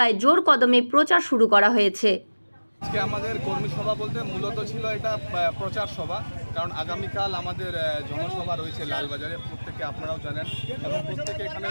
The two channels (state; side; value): inverted; both; correlation -1.00